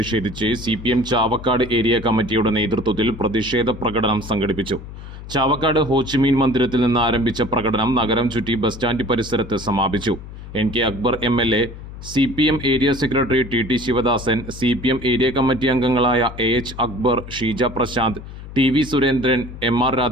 CPM ചാവക്കാട് ഏരിയ കമ്മിറ്റിയുടെ നേതൃത്വത്തിൽ പ്രതിഷേധ പ്രകടനം സംഘടിപ്പിച്ചു. ചാവക്കാട് ഹോച്ചിമീൻ മന്ദിരത്തിൽ നിന്ന് ആരംഭിച്ച പ്രകടനം നഗരം ചുറ്റി ബസ് സ്റ്റാൻഡ് പരിസരത്ത് സമാപിച്ചു. NK Akbar MLA, CPM area secretary TT Sivadasan, CPM area committee അംഗങ്ങളായ AH Akbar, Sheeja Prashanth, TV Surendran, MR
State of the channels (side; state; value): left; noise; hum, 13 dB below the sound